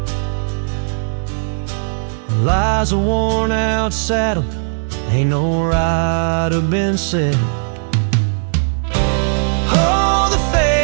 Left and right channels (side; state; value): left; silent; 68 dB below the other